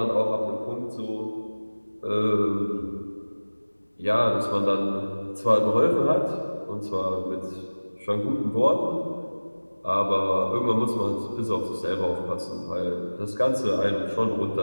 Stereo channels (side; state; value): both; inverted; correlation -1.00